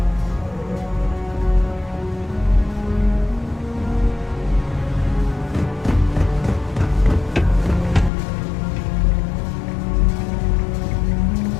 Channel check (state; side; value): drops out; right; at 8.1 s